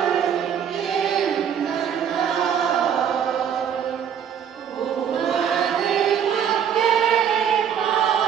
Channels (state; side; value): quieter; left; 8.4 dB